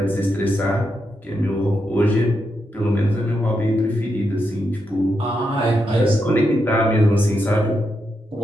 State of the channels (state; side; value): normal; both; correlation 0.84